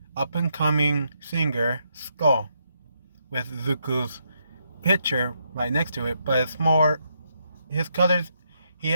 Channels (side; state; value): both; inverted; correlation -0.78